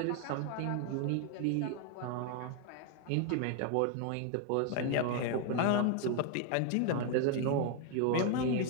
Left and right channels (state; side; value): different; both; correlation 0.00